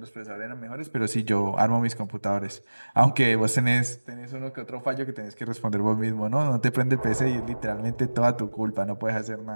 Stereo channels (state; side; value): inverted; both; correlation -1.00